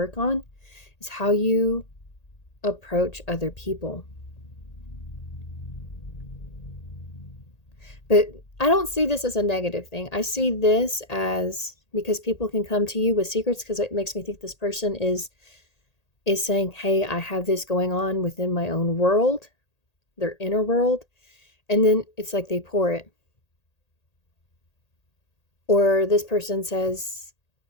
on is how you approach other people. But I don't see this as a negative thing. I see this as, because people can come to you with secrets, because it makes me think this person is saying, hey, I have this going on within my own world, their inner world. And then it's like they pour it. Or this person says,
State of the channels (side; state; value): right; late; 1.8 ms